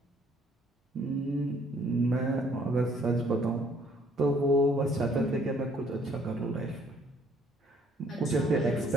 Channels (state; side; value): normal; both; correlation 0.63